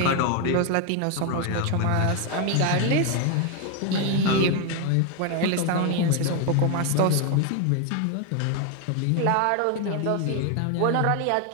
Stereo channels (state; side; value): different; both; correlation 0.01